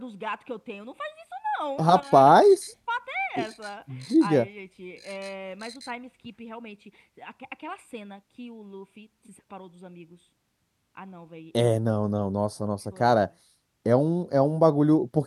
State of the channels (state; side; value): identical; both; correlation 1.00